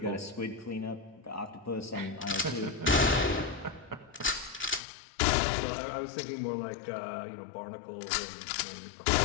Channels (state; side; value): drops out; right; at 4.8 s